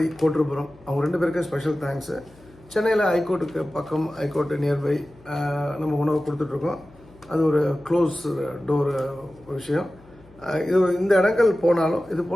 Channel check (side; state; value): left; noise; hum, 26 dB below the sound